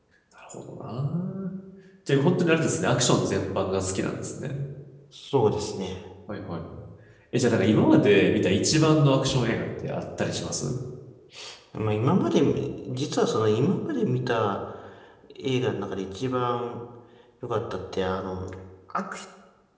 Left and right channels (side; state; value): both; identical; correlation 1.00